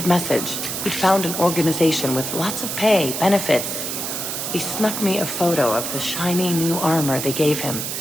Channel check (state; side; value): noise; right; hiss, 4 dB below the sound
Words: message. He'd found an organization with lots of pay, benefits. He snuck me a photo of the shiny new armor they gave him.